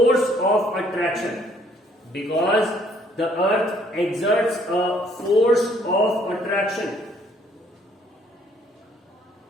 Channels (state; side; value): normal; both; correlation 0.64